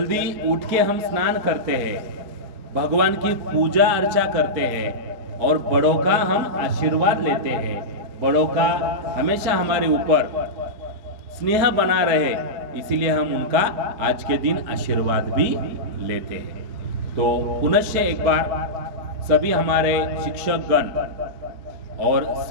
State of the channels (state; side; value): late; left; 4.6 ms